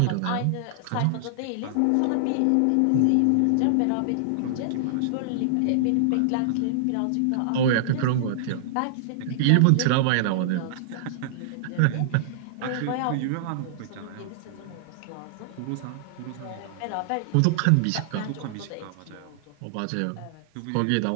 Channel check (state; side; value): different; both; correlation -0.01